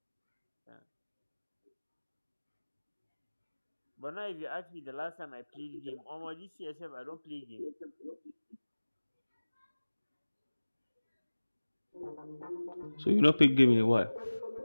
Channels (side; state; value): both; inverted; correlation -1.00